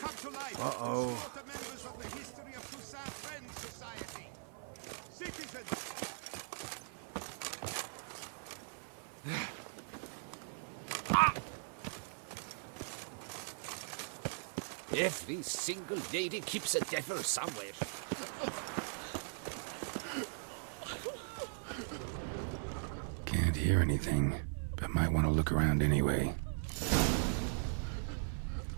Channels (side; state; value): left; silent; 51 dB below the other